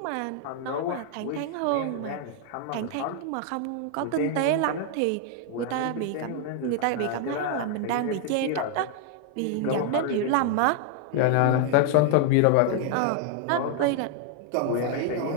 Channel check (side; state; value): both; different; correlation 0.00